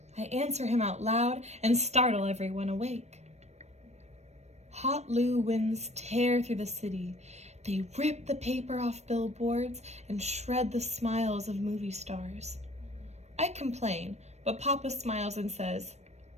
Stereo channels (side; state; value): left; late; 0.32 ms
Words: I answer him out loud and startle everyone awake. Hot Loo winds tear through the city. They rip the paper off billboards and shred the smiles of movie stars. I complain, but Papa smiles and says,